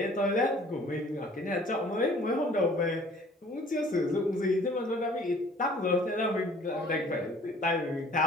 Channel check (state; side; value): normal; both; correlation 0.53